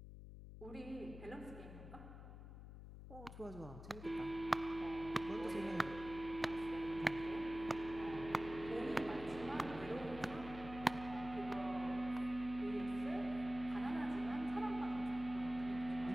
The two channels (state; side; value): noise; left; hum, 12 dB below the sound